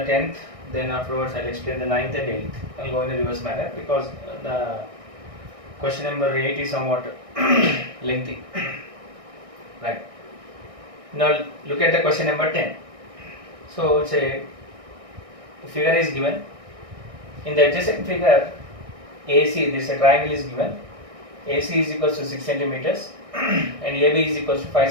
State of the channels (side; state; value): left; late; 1.6 ms